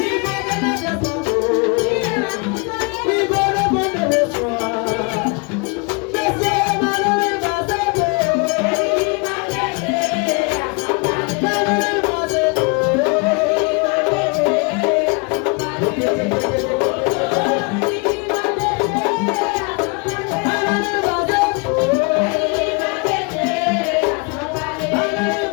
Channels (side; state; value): right; quieter; 32.1 dB